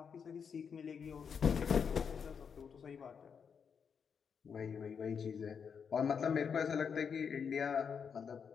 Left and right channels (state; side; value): quieter; right; 6.7 dB